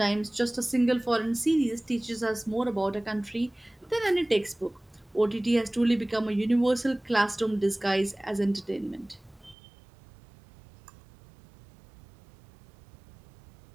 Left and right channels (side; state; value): left; drops out; at 9.6 s